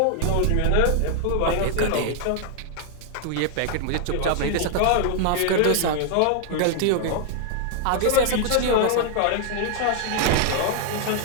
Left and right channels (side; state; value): both; different; correlation 0.00